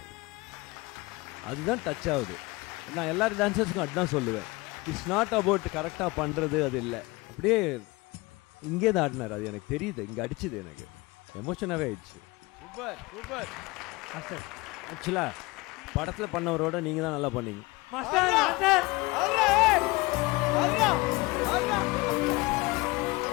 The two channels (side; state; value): right; quieter; 23.3 dB